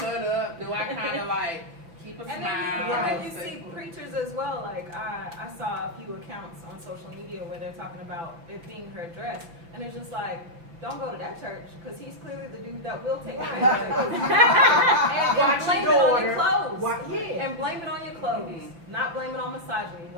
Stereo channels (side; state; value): left; late; 5.9 ms